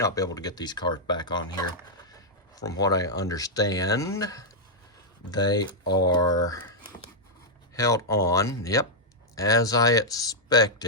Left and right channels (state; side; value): normal; both; correlation -0.05